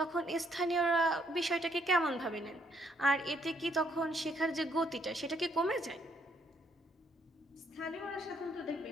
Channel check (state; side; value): normal; both; correlation 0.70